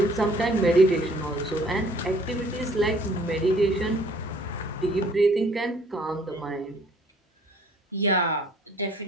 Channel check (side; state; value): both; normal; correlation 0.57